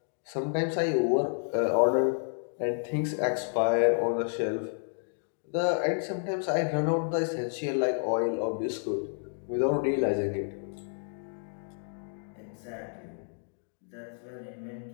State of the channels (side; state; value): right; silent; digital silence